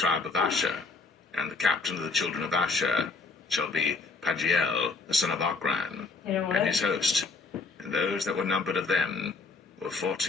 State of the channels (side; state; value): right; quieter; 4.0 dB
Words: of Asher, and the captain of the children of Asher shall be Pagiel, the son of Ochran, and his host, and those that were numbered of them were